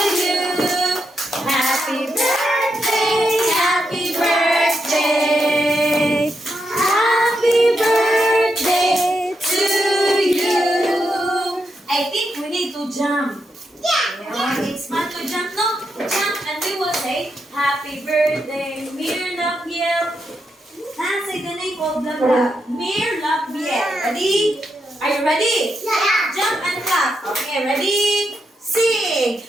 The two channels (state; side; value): normal; both; correlation 0.83